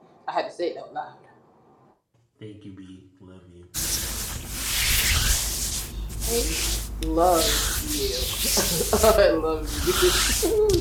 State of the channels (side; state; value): both; identical; correlation 1.00